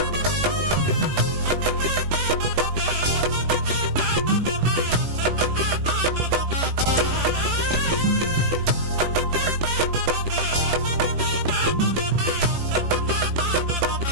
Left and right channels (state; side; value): late; left; 18 ms